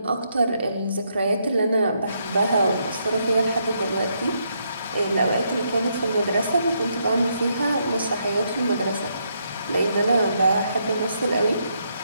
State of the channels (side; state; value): both; inverted; correlation -0.76